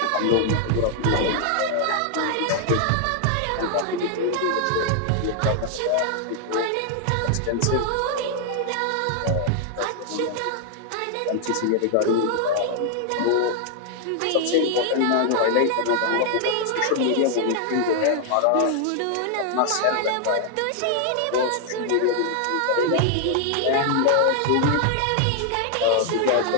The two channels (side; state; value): both; different; correlation 0.00